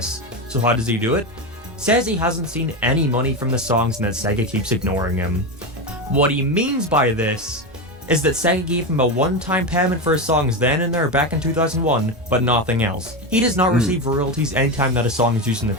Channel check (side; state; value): both; normal; correlation 0.16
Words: So how does he do it? says he hasn't seen any money from the songs and that Sega keeps ignoring him. What he means by this is that Sega gave him a one-time payment for his songs then and there back in 2001, but nothing else. He does not receive royalties anytime that a song is used in the